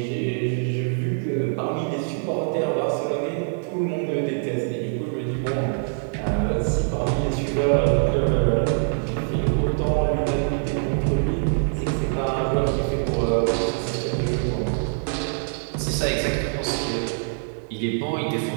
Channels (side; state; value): left; silent; digital silence